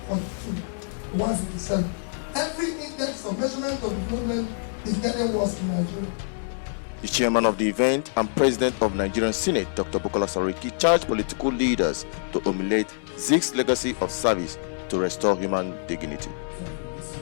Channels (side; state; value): right; silent; 61 dB below the other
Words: to 157. Every index of measurement of development is getting worse in Nigeria. The chairman of the event and president of Nigerian Senate Dr. Bukola Sakari charged political leaders to emulate Ziks' legacy of service to restore human dignity.